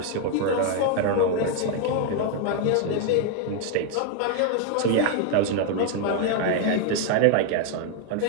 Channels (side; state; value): both; different; correlation 0.00